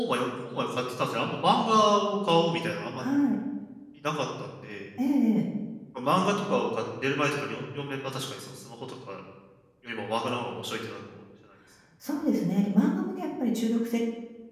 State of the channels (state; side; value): identical; both; correlation 1.00